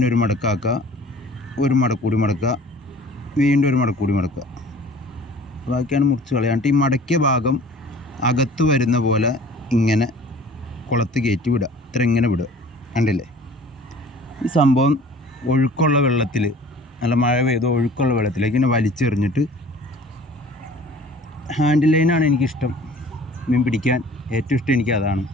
ഒരു മടക്കാക്കുക, ഒരു മടക്കൂടി മടക്കുക, വീണ്ടും ഒരു മടക്കൂടി മടക്കുക. ബാക്കിയാണ് മുറിച്ച് കളയാണ്ട് ഈ മടക്കിയ ഭാഗം അകത്ത് വരുന്ന പോലെ ഇങ്ങനെ കുളത്ത് കയറ്റി വിടുക. ഇത്ര ഇങ്ങനെ വിടുക. കണ്ടില്ലേ? ഈ സംഭവം ഒഴുക്കുള്ള വെള്ളത്തിൽ, നല്ല മഴ പെയ്ത് ഒഴുക്കുള്ള വെള്ളത്തിലേക്ക് ഇങ്ങനെ വലിച്ചെറിഞ്ഞിട്ട്, ഹാൻഡിൽ ലൈനാണ് എനിക്കിഷ്ടം. മീൻ പിടിക്കാൻ ഏറ്റവും ഇഷ്ടം എനിക്ക് അതാണ്.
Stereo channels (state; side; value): normal; both; correlation 0.47